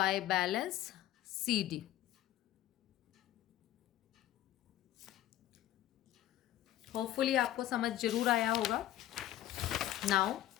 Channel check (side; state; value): right; quieter; 13.5 dB